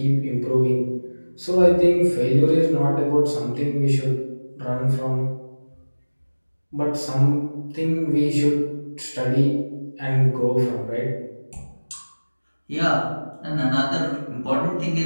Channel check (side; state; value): both; inverted; correlation -1.00